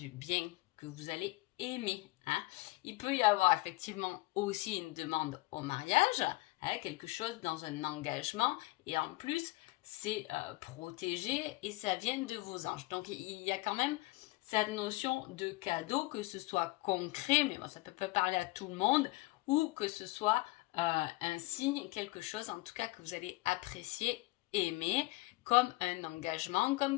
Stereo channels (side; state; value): right; quieter; 21.2 dB